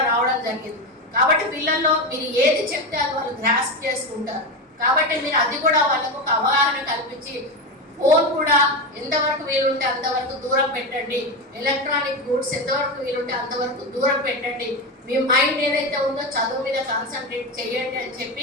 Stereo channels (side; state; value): both; normal; correlation 0.16